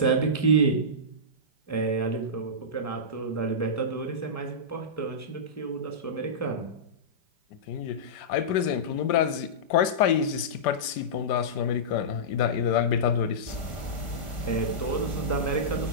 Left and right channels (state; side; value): late; right; 5.1 ms